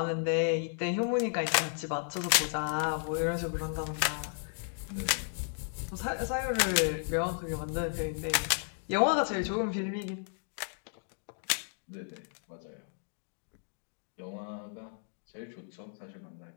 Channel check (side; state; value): right; silent; 55 dB below the other